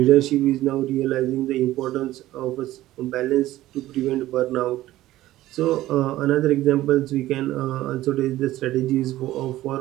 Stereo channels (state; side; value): quieter; left; 15.3 dB